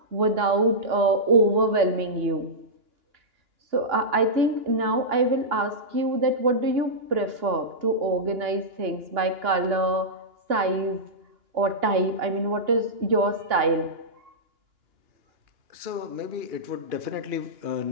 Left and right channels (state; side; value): late; left; 2.9 ms